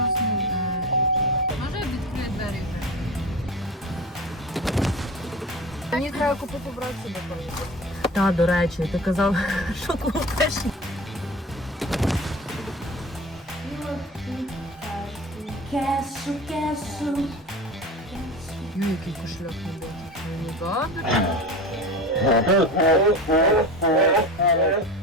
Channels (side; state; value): both; normal; correlation 0.31